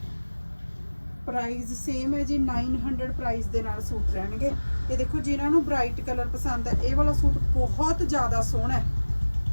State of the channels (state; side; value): inverted; both; correlation -1.00